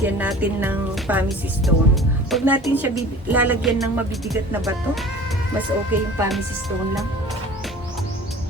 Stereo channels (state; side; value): normal; both; correlation 0.42